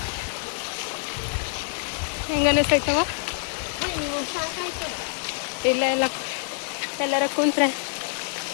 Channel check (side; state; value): right; silent; digital silence